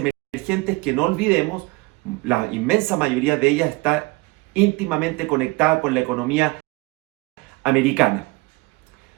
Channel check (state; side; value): quieter; left; 23.6 dB